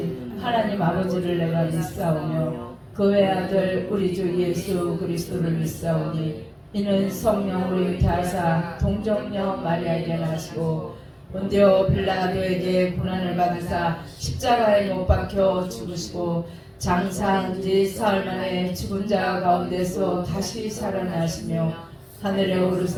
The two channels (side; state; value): both; identical; correlation 1.00